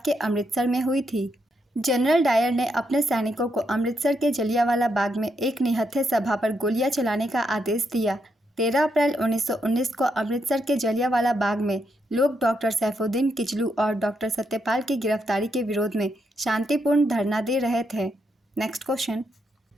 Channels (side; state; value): both; normal; correlation 0.80